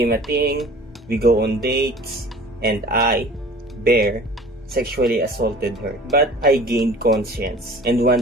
a thing. We go on dates. And I, Bear, sexually assaulted her. But I gained conscience and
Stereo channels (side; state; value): both; normal; correlation 0.45